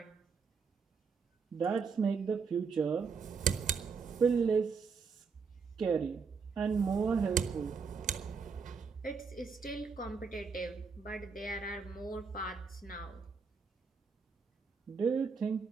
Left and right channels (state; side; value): quieter; left; 5.4 dB